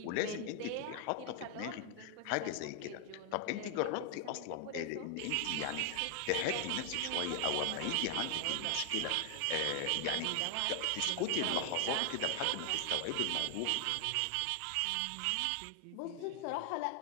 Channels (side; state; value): both; different; correlation 0.00